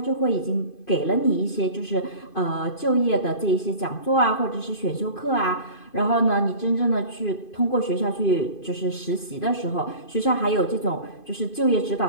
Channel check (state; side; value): late; right; 2.5 ms